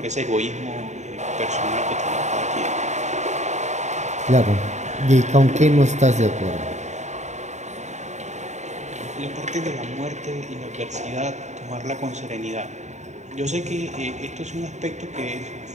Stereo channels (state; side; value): late; left; 0.34 ms